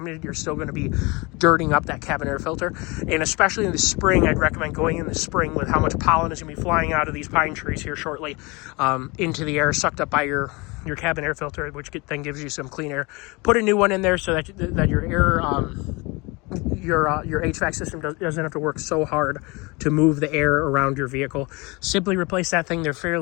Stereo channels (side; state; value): right; quieter; 26.0 dB